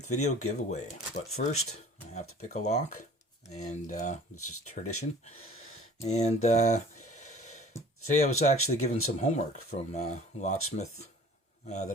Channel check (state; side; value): normal; both; correlation 0.47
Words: video giveaway. But first, I have to pick a lock, and this is tradition. And today I was actually given some homework from a locksmith